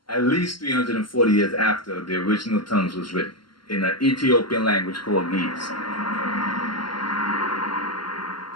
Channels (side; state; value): right; late; 0.73 ms